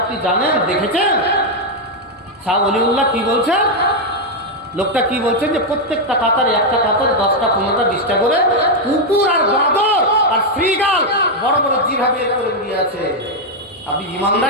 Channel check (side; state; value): both; normal; correlation 0.01